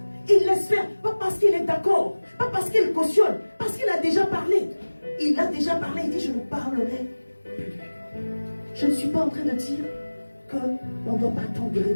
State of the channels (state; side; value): inverted; both; correlation -1.00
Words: il laisse faire, pas parce qu'il est d'accord, pas parce qu'il cautionne, parce qu'il a déjà parlé. Il a déjà parlé, il dit je ne parlerai plus. Je ne suis pas en train de dire qu'on ne doit pas attendre de